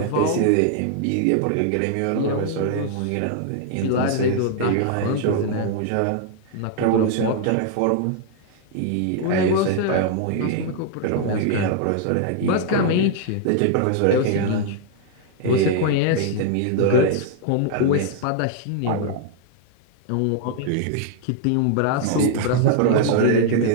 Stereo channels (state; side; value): different; both; correlation 0.00